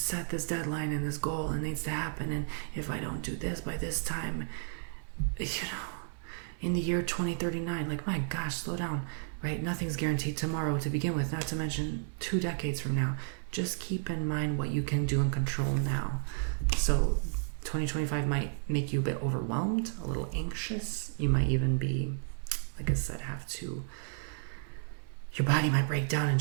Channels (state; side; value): silent; left; 56 dB below the other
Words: this deadline and this goal and it needs to happen, and if I don't do this by this time, you know, in the year 2039, like, my gosh, slow down, right? Nothing's guaranteed tomorrow to begin with, not to mention 2 decades from now. Just keep in mind what you can do and control now. So 2025 might make you a bit overwhelmed, a little anxious. You might even be, like I said, your body might break down and